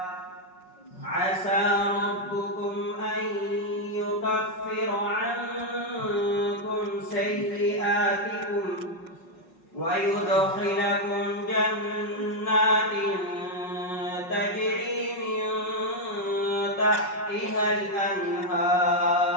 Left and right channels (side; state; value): right; late; 5.4 ms